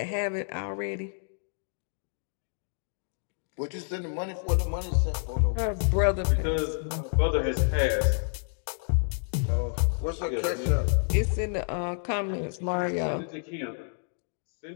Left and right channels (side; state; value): right; silent; digital silence